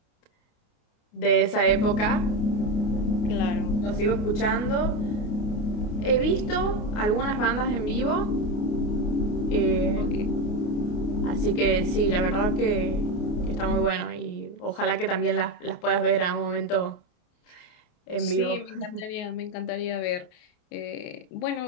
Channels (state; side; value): late; right; 28 ms